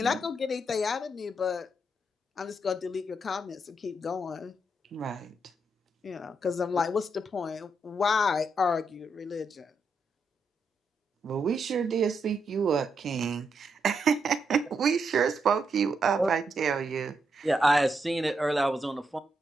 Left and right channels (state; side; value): normal; both; correlation 0.80